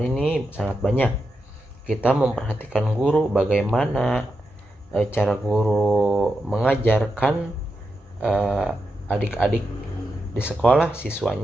sangat banyak. Kita memperhatikan guru, bagaimana cara guru mengajarkan adik-adik di sekolah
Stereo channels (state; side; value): normal; both; correlation 0.86